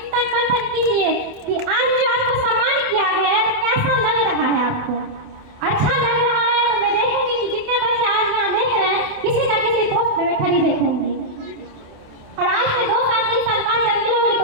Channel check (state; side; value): late; left; 28 ms